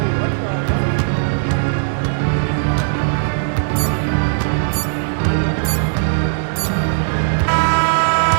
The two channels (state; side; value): silent; left; digital silence